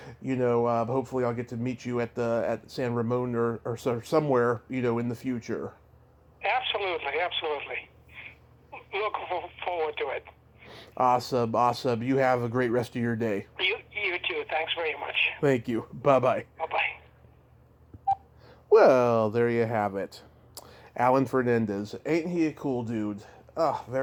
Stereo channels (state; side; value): identical; both; correlation 1.00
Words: hopefully, I'll get to meet you at San Ramon or somewhere in the future. Absolutely. Looking forward to it. Awesome. You have a great rest of your day. You too. Thanks very much. Thank you. Bye-bye. Bye-bye. Well, there you have it. Alan Fernandes. Ain't he a cool dude? Oh,